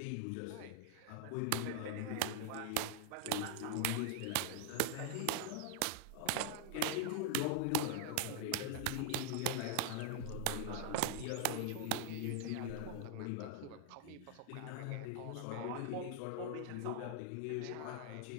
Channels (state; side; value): different; both; correlation -0.01